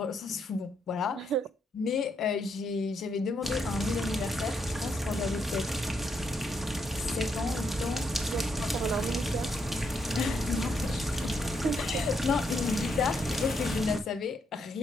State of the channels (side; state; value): both; normal; correlation 0.77